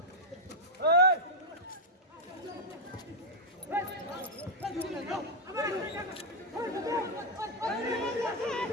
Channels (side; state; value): both; normal; correlation -0.01